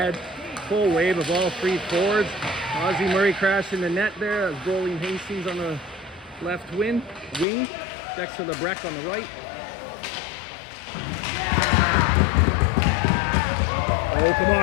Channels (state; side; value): drops out; right; at 7.5 s